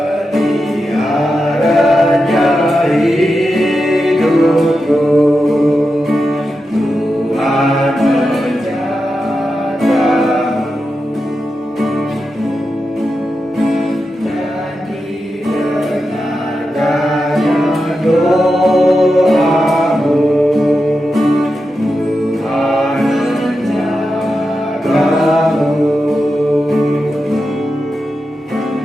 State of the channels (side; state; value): both; normal; correlation 0.89